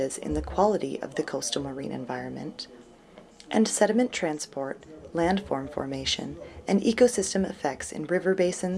in the quality of the coastal marine environment, and sediment transport, landform formation, and ecosystem effects in river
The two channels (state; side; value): identical; both; correlation 1.00